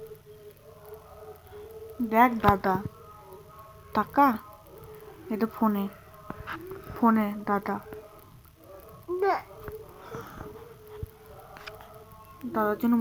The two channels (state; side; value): identical; both; correlation 1.00